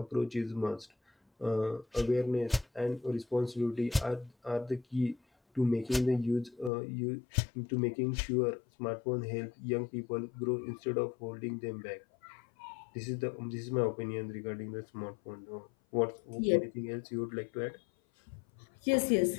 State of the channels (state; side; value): drops out; right; at 6.7 s